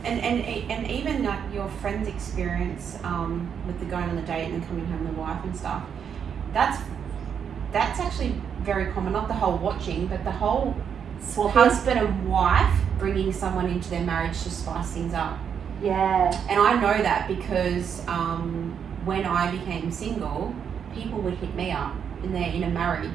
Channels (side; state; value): left; quieter; 7.6 dB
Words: And even like your friend's experience with the going on the date and then coming home with the wife and stuff, that's actually very common. Not the whole watching, but the whole husband and wife bringing someone into their marriage to spice things up. Yeah. And I know that because when I became single, people would hit me up and they're in a